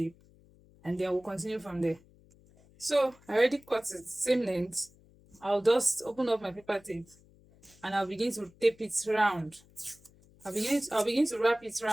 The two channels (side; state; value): left; noise; hum, 27 dB below the sound